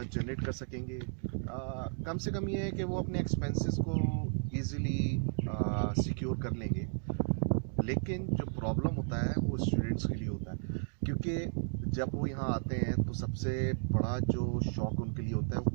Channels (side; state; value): left; silent; digital silence